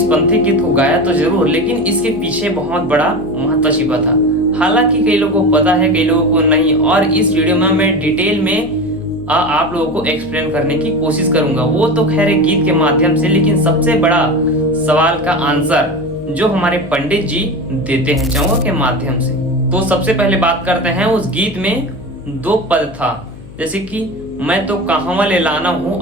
पंथी गीत को गाया तो जरूर, लेकिन इसके पीछे बहुत बड़ा महत्व छिपा था। हालांकि कई लोगों को पता है, कई लोगों को नहीं। और इस वीडियो में मैं डिटेल में आप लोगों को एक्सप्लेन करने की कोशिश करूंगा। वो तो खैर एक गीत के माध्यम से, लेकिन सबसे बड़ा सवाल का आंसर जो हमारे पंडित जी देते हैं चौवा के माध्यम से। तो सबसे पहले बात करते हैं उस गीत में दो पद था, जैसे कि मैं तो कहवा ले लाना हूँ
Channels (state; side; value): noise; left; hum, 18 dB below the sound